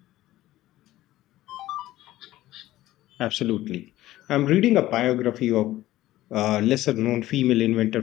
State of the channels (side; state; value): right; quieter; 15.5 dB